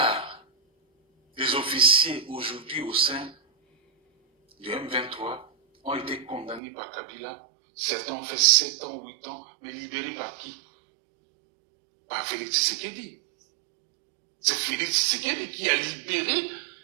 des officiers aujourd'hui au sein du M23 ont été condamnés par Kabila. Certains ont fait 7 ans, 8 ans, mais libérés par qui? Par Félix Tshisekedi. C'est Félix Tshisekedi qui a libéré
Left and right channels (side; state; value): left; drops out; at 6.6 s